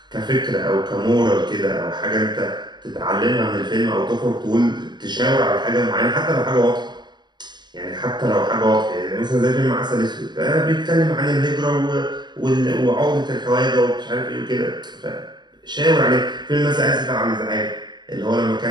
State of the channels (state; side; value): late; left; 0.21 ms